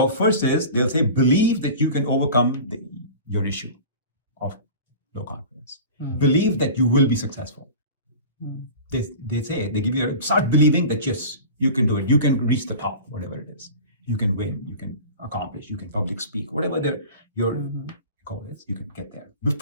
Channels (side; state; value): both; inverted; correlation -0.37